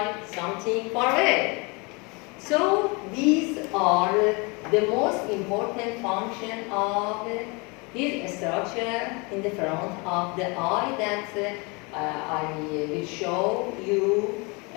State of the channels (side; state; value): right; quieter; 29.3 dB